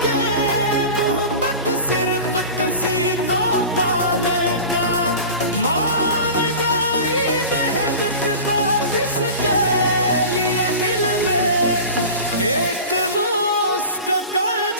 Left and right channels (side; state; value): both; inverted; correlation -0.34